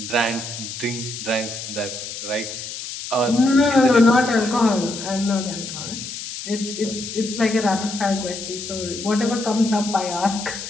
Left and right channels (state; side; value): noise; left; hiss, 8 dB below the sound